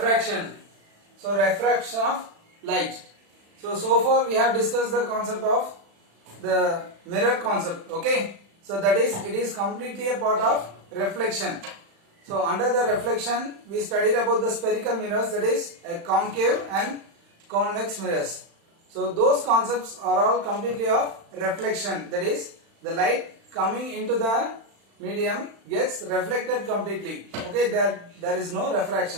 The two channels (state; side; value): late; left; 35 ms